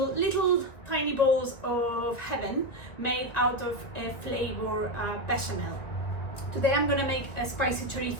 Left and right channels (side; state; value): right; late; 1.9 ms